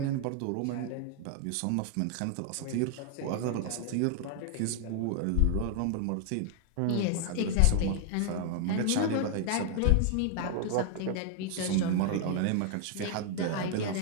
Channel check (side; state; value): both; different; correlation 0.00